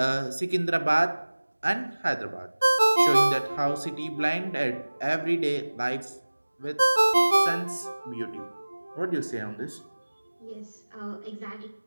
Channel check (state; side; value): inverted; both; correlation -1.00